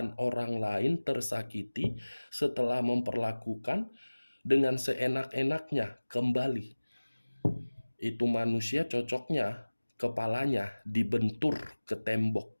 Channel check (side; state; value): both; inverted; correlation -1.00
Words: orang lain tersakiti setelah memperlakukan dengan seenak-enaknya kembali. Itu manusia cocoknya kepalanya dibentur ke tembok